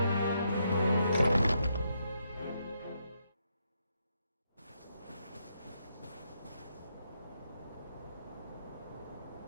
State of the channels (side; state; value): both; inverted; correlation -0.79